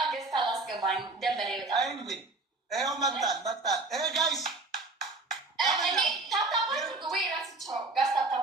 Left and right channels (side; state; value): left; quieter; 3.3 dB